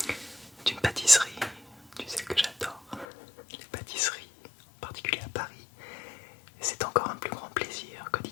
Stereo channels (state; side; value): drops out; right; at 3.1 s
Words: d'une pâtisserie. Tu sais que j'adore les pâtisseries, en particulier à Paris. Et c'est encore un plus grand plaisir que